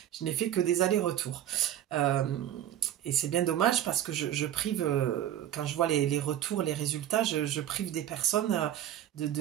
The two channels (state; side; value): quieter; left; 11.6 dB